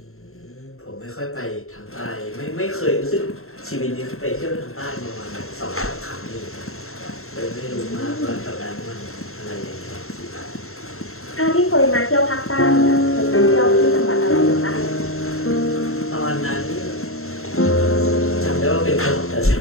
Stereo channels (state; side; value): late; right; 0.62 ms